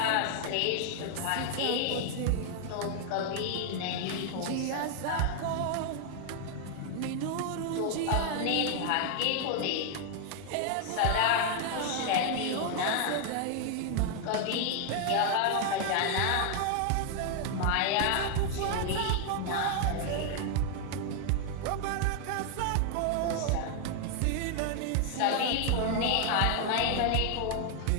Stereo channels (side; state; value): both; different; correlation 0.00